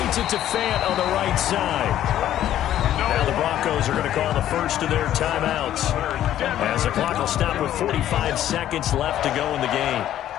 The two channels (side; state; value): right; quieter; 12.0 dB